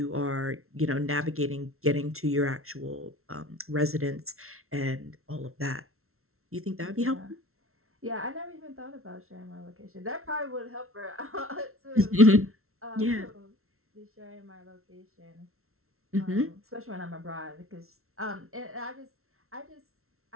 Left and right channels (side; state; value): left; late; 0.62 ms